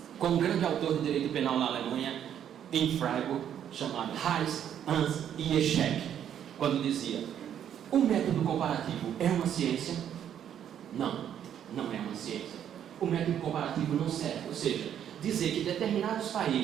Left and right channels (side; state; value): left; quieter; 9.6 dB